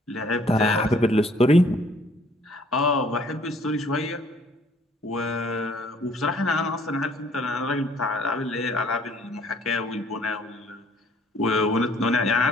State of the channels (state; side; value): normal; both; correlation 0.60